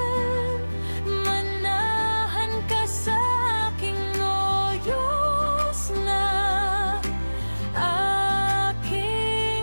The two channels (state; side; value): inverted; both; correlation -1.00